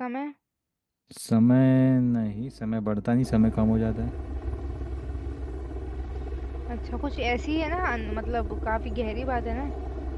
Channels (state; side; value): identical; both; correlation 1.00